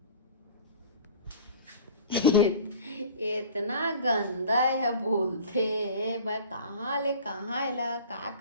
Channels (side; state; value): both; inverted; correlation -0.42